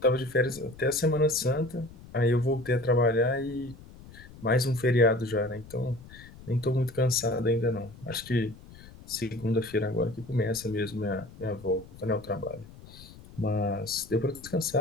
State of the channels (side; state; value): left; noise; rumble, 19 dB below the sound